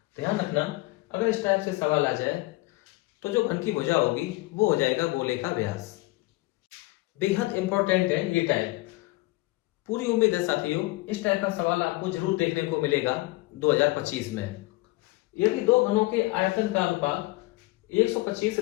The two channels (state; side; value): quieter; right; 21.1 dB